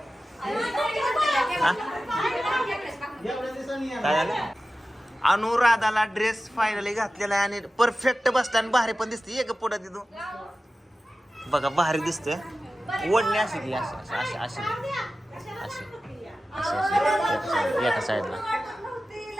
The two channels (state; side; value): normal; both; correlation 0.95